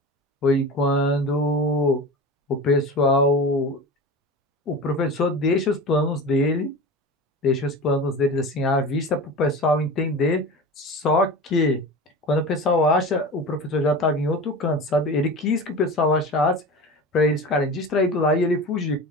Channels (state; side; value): normal; both; correlation 0.31